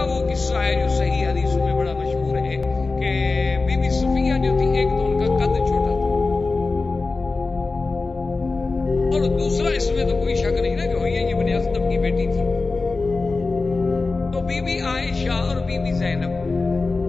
وہ قصہ ہے جو صحیح حدیثوں میں بڑا مشہور ہے کہ بی بی صفیہ جو تھی ایک تو ان کا قد چھوٹا تھا، اور دوسرا اس میں تو کوئی شک نہیں نا کہ حیی ابن اخطب کی بیٹی تھی۔ تو بی بی عائشہ اور بی بی زینب،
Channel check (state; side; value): quieter; right; 3.8 dB